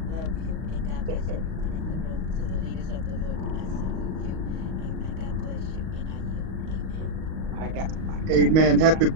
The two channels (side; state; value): left; late; 38 ms